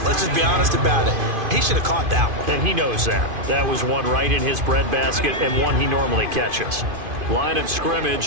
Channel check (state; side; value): late; left; 2.5 ms